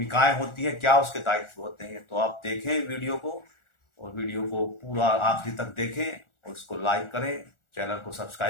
होती है, क्या उसके दायित्व होते हैं। तो आप देखें वीडियो को और वीडियो को पूरा आखिरी तक देखें और उसको लाइक करें, चैनल को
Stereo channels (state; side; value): late; right; 1.4 ms